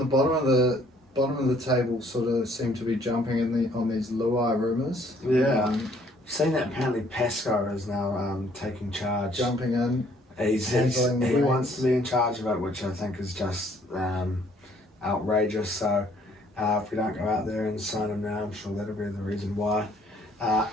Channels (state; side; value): normal; both; correlation 0.62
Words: bottom of the table sort of seem to be jumping on these Luai rumours. Yeah. Seen that apparently Pascoe is now taking charge. Jumping in. He handling the wants reins. to be in charge of it, which I think is just outrageous. So if we don't go out there and sign him now, I'm sure that'll be the reason why. A